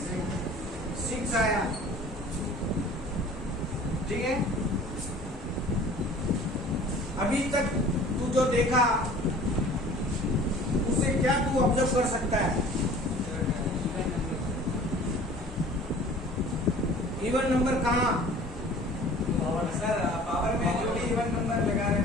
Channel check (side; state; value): both; normal; correlation 0.47